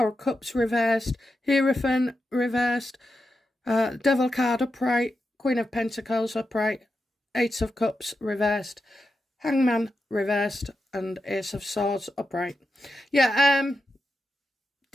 of Cups reversed, Hierophant reversed, Devil card upright, Queen of Pentacles upright, Eight of Cups reversed, Hangman reversed, and Ace of Swords upright. Yeah,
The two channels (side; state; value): both; normal; correlation 0.88